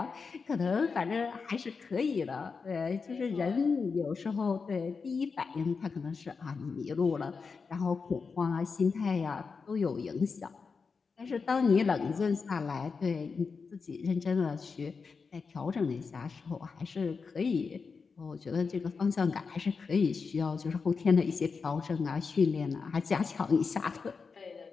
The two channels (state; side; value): quieter; right; 5.0 dB